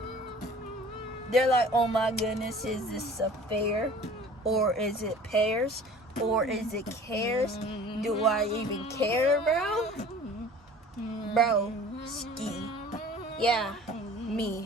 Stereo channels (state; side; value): normal; both; correlation 0.46